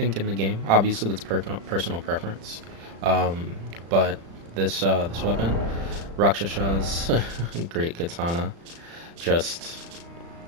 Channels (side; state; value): left; late; 35 ms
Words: in the game, obviously that's personal preference. Um, but this weapon, Rakshasha's Great Katana, just